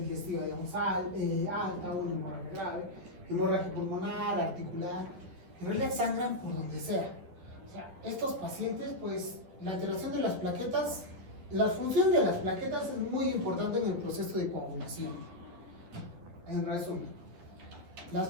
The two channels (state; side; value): late; left; 11 ms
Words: digamos, alta, o una hemorragia grave, hemorragia pulmonar, articular. En realidad sangran por donde sea. O sea, estos pacientes, pues, la alteración de las plaquetas, la función de las plaquetas es muy importante en el proceso de coagulación. En resumen, las